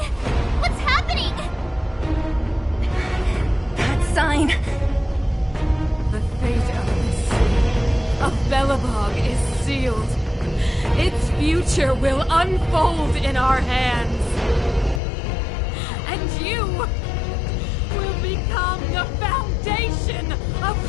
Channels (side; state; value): right; drops out; at 15.0 s